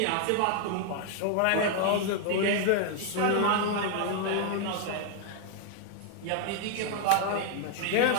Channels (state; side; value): different; both; correlation 0.00